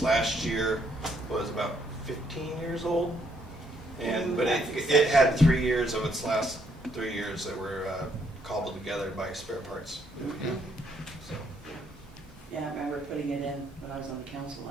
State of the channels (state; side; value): normal; both; correlation 0.71